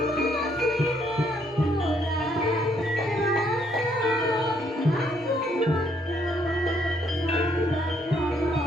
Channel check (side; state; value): both; normal; correlation 0.69